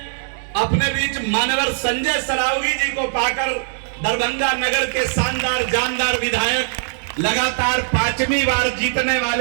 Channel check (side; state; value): left; silent; digital silence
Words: अपने बीच मान्यवर संजय सरावगी जी को पाकर। दरभंगा नगर के शानदार जानदार विधायक, लगातार 5वीं बार जीतने